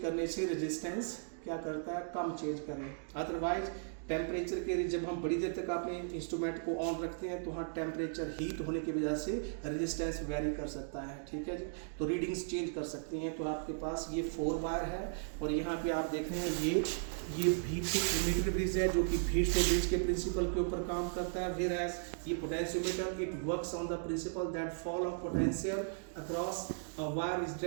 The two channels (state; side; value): silent; left; digital silence